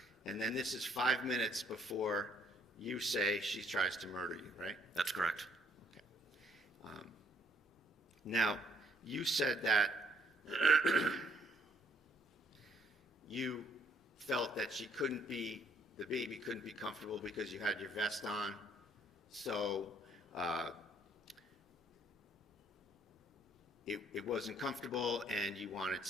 And then this is 5 minutes before you say she tries to murder you, right? That's correct. Okay. Now, you said that you felt that the baby couldn't be comfortable because you had your vest on. So it wasn't comfortable, and you wanted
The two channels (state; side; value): normal; both; correlation 0.65